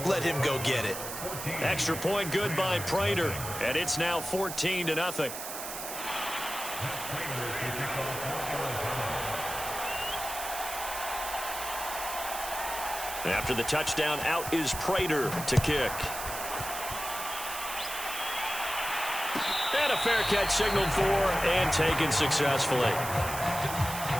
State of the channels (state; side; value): noise; right; hiss, 7 dB below the sound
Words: Let him go get it. Extra point good by Prater, and it's now 14-0. After the touchdown, out is Prater to kick. And a fair catch signaled for and taken successfully.